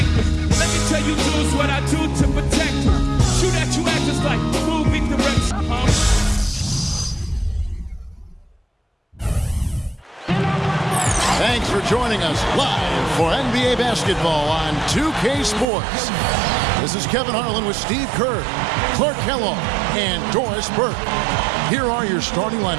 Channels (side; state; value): left; drops out; at 15.7 s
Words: Let me tell you dudes what I do to protect you. Shoot at you actors like movie direction. Thanks for joining us live for NBA basketball on 2K Sports. This is Kevin Harlan with Steve Kerr, Clark Kellogg, and Doris Burke. Here are your starting